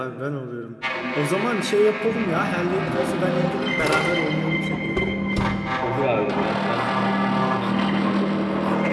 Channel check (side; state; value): both; identical; correlation 1.00